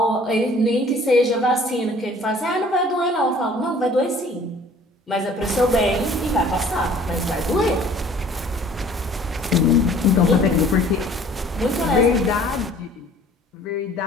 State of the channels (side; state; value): both; normal; correlation 0.52